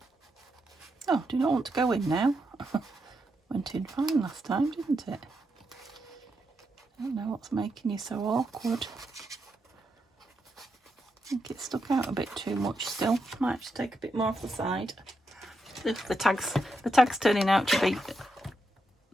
oh, do you not want to go in now? Went in fine last time, didn't it? I don't know what's making you so awkward. I think it stuck out a bit too much still. Might have to take a bit more off the side. The tag's turning out to be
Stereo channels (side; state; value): both; normal; correlation 0.83